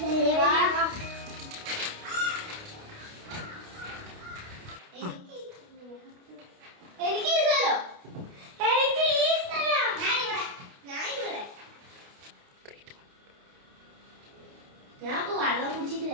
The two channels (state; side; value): late; left; 29 ms